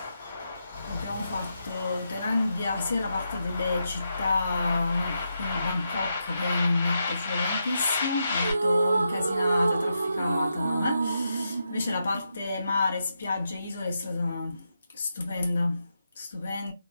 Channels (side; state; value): both; inverted; correlation -0.84